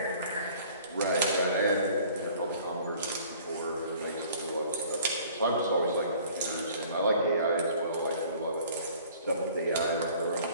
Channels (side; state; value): both; inverted; correlation -0.51